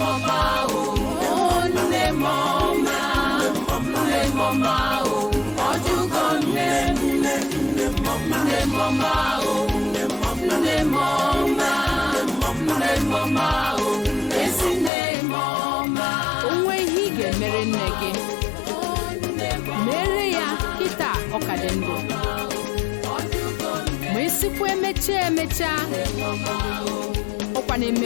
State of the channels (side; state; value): right; drops out; at 14.9 s